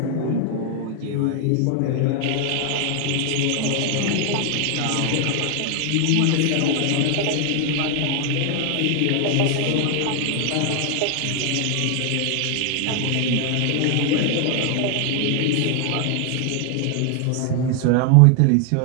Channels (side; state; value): both; different; correlation 0.00